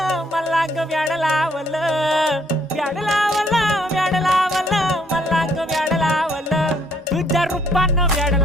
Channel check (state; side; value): normal; both; correlation 0.67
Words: मला ग व्याड लावलं व्याड लावलं व्याड लावलं मला ग व्याड लावलं तुझ्या रूपानं व्याड